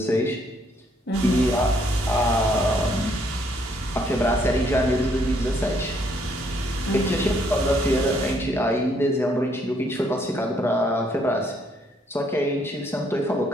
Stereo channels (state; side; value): normal; both; correlation 0.69